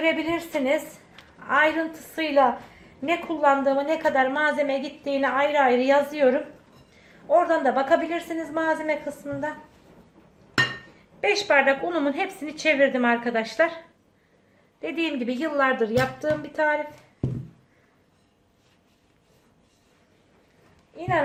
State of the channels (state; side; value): identical; both; correlation 1.00